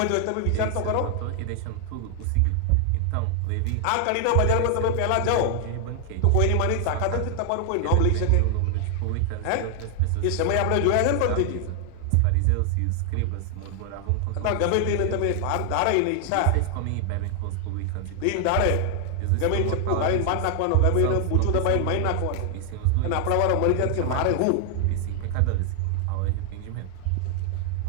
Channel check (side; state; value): both; different; correlation 0.00